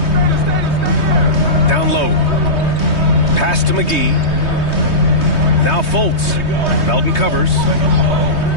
Down low. Pass to McGee. Now Fultz. Melton covers.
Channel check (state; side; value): late; right; 3.2 ms